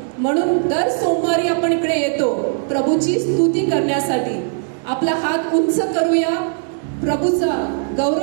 म्हणून दर सोमवारी आपण इकडे येतो प्रभूची स्तुती करण्यासाठी. आपला हात उंच करूया, प्रभूचा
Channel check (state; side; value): silent; left; 65 dB below the other